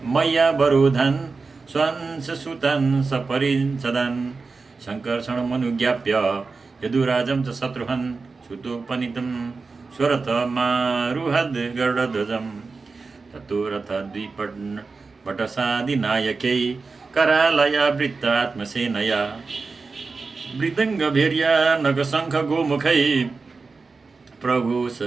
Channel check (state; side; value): quieter; left; 4.3 dB